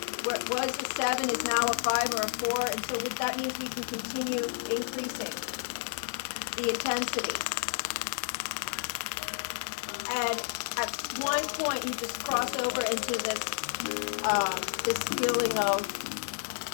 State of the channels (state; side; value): silent; right; digital silence